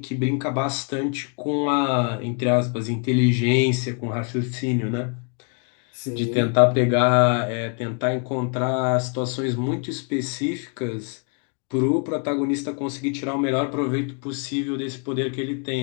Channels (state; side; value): quieter; right; 38.7 dB